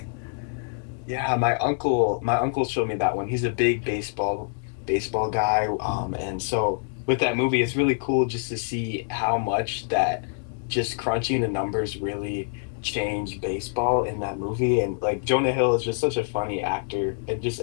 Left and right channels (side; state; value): right; silent; digital silence